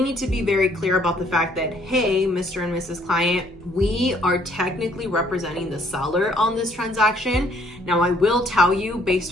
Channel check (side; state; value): both; normal; correlation 0.64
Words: need to be very clear about the fact that, hey, Mr. and Mrs. Client, we are technically representing the seller on this transaction. Now, I will tell you, based